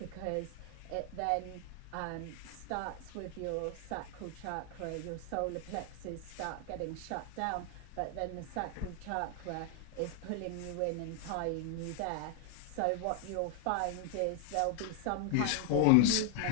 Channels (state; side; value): different; both; correlation 0.00